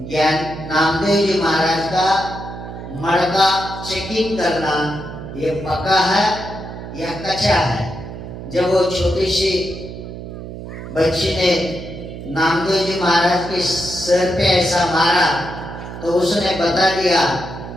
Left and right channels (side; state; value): right; noise; hum, 10 dB below the sound